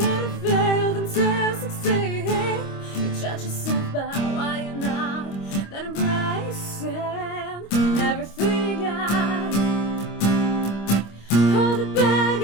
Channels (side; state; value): right; late; 25 ms